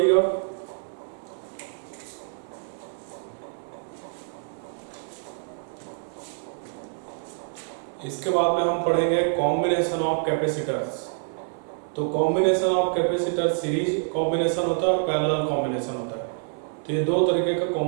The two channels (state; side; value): silent; left; 61 dB below the other